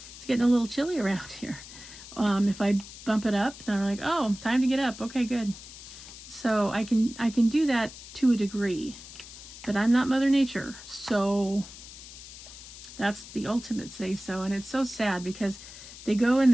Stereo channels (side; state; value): left; noise; hiss, 15 dB below the sound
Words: it's getting a little chilly around here. If I bump it up, they're like, oh, time to get up. Okay, good. So I can do that to a degree, but I'm not Mother Nature. So that's the ultimate say so. And it's so sad because they go and